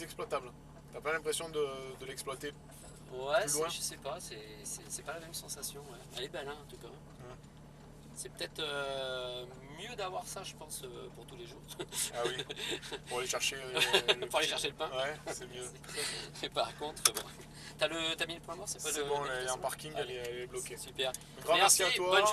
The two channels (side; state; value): both; identical; correlation 1.00